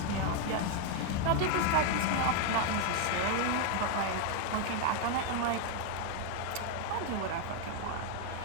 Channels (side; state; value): both; different; correlation 0.01